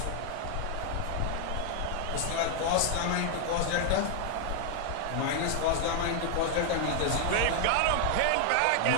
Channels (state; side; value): different; both; correlation 0.00